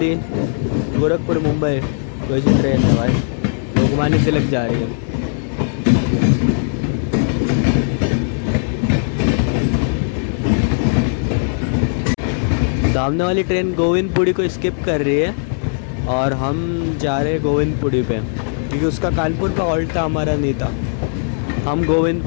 गोरखपुर मुंबई कोई सी ट्रेन है भाई, लोकमान्य तिलक जा रही है। सामने वाली ट्रेन गोविंदपुरी को स्किप कर रही है और हम जा रहे हैं गोविंदपुरी पे, क्योंकि उसका कानपुर का हॉल्ट था, हमारा नहीं था। हम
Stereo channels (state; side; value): silent; right; digital silence